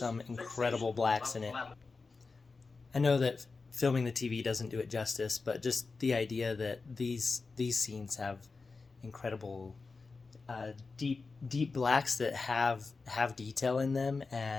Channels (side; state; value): right; quieter; 4.2 dB